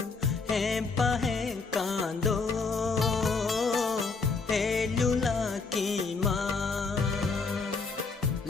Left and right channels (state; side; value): quieter; right; 4.5 dB